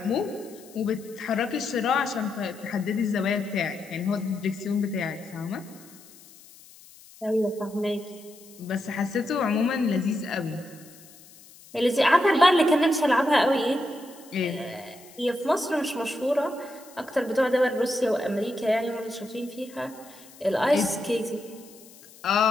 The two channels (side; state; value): left; noise; hiss, 22 dB below the sound